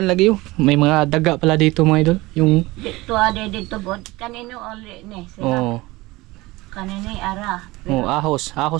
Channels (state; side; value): quieter; left; 20.7 dB